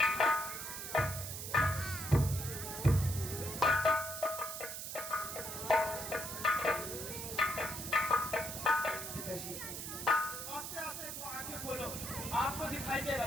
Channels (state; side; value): noise; right; hiss, 6 dB below the sound